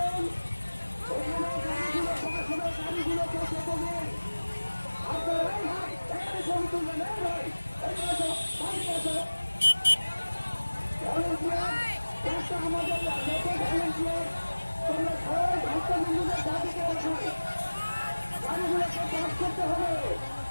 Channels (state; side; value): inverted; both; correlation -1.00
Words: ওখানে গাড়িগুলো পাস হবে, গাড়িগুলোকে যেতে দিন। আপনারা এই ভাই এখানে ছবি তুলবেন, এই ভাই এখানে আসো, বাড়ি আসো। ভলেন্টিয়ার চেষ্টা আমাদের যত ভলেন্টিয়ার তোমরা সবাই ভক্তবৃন্দদের দাবিতে আসো, গাড়িগুলোকে পাস করতে হবে।